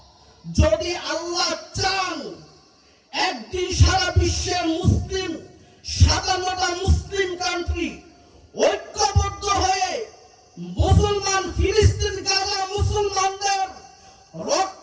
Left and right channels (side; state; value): both; identical; correlation 1.00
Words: যদি আল্লাহ চান, একদিন সারা বিশ্বের মুসলিম 57টা মুসলিম কান্ট্রি ঐক্যবদ্ধ হয়ে মুসলমান ফিলিস্তিন গাজা মুসলমানদের